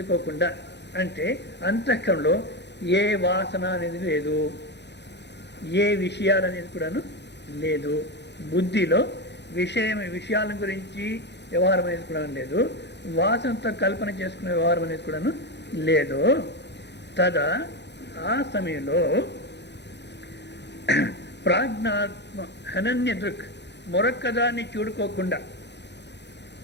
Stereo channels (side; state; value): right; late; 0.50 ms